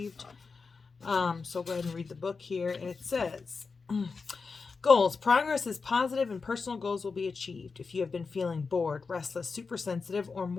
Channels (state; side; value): quieter; right; 4.7 dB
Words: So I'll go ahead and read the book here. And it says, goals. Progress is positive and personal goals will be achieved. If you have been feeling bored, restless, super sensitive, or